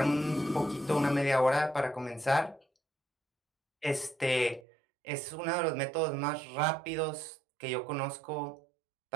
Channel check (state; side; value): drops out; left; at 4.6 s